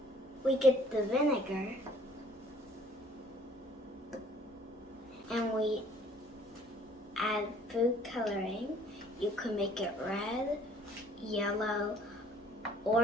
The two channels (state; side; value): normal; both; correlation 0.57